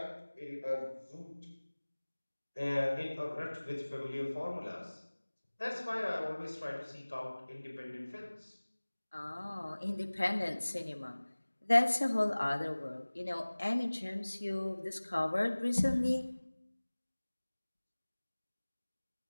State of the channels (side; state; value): both; inverted; correlation -1.00